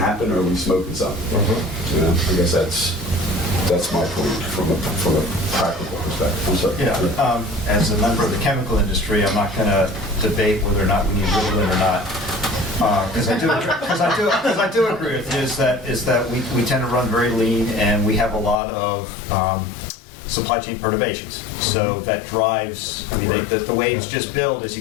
or are we smoking something? I guess that's my point from a practical perspective. I'm sorry. As a member of the chemical industry, I'm not going to debate whether or not we need Ritalin or not. Because I do agree with you is that we tend to run very lean, and we have a lot of supply chain perturbations. So that drives, the waves just build as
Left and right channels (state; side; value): drops out; right; at 18.6 s